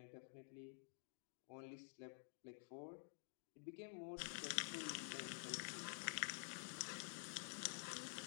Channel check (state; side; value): silent; right; digital silence